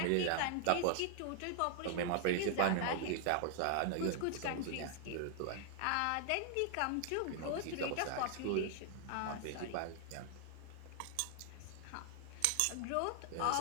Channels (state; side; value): different; both; correlation 0.00